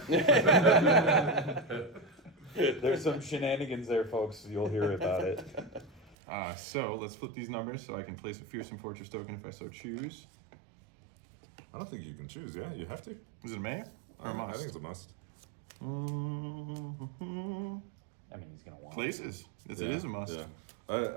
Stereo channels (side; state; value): left; drops out; at 6.2 s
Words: There's some shenanigans there, folks. You'll hear about it. So let's flip these numbers so I can place a Fearsome Fortress token if I so choose. I don't think you can choose. Yeah, you have to. Is it a may or a I must? think it's a must. I mean, he's gonna want Places. It Yeah, is a must. Yeah.